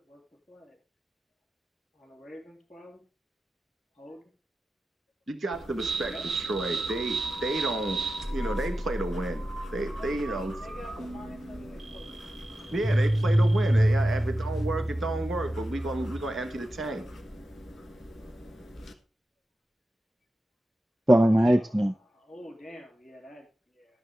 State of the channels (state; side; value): normal; both; correlation 0.92